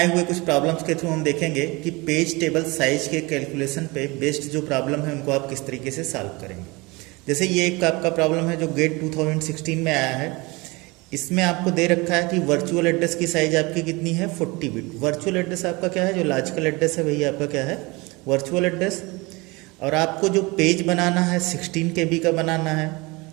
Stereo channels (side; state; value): left; quieter; 24.7 dB